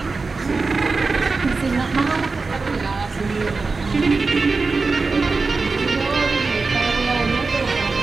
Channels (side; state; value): left; quieter; 4.1 dB